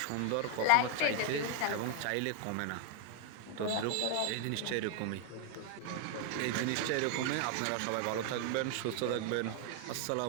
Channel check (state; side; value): different; both; correlation 0.00